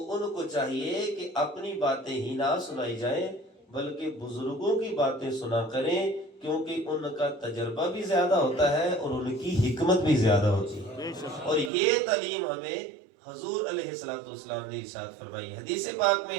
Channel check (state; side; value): drops out; left; at 11.7 s